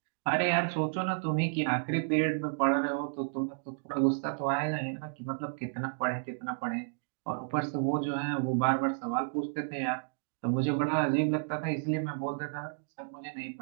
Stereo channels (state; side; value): silent; left; digital silence